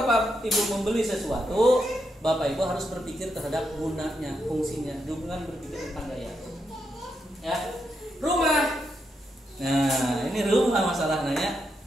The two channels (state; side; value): normal; both; correlation 0.82